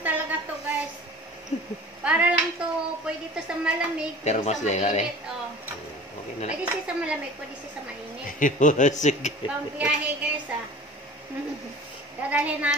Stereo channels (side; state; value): both; normal; correlation 0.41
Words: talaga to guys. Para lang to, pwede to sa malamig, Pero pwede mas sa mainit. Oh. Okay na lang. Pwede siya sa malamig, pwede siya sa mainit. Sige. Pang biyahe guys Dadalhin